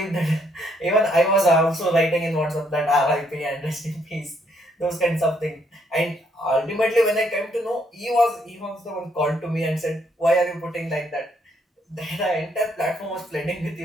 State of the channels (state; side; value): normal; both; correlation 0.71